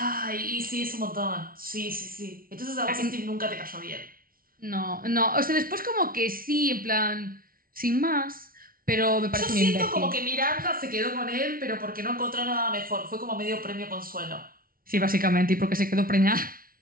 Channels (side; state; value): left; late; 0.43 ms